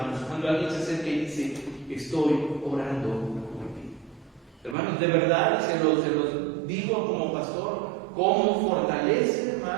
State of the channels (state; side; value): drops out; left; at 4.8 s